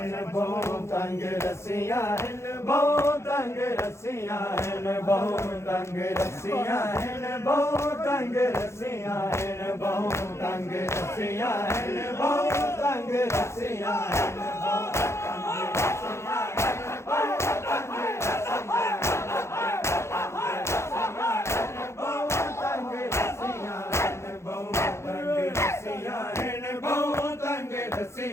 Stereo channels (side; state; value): right; late; 0.13 ms